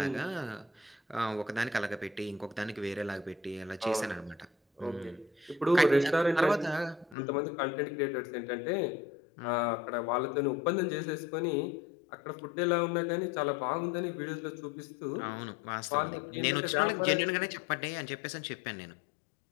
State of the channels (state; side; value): drops out; right; at 7.2 s